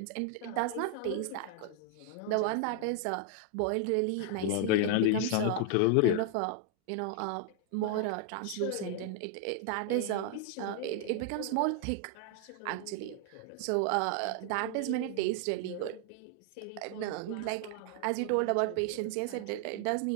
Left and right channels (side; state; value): both; different; correlation 0.00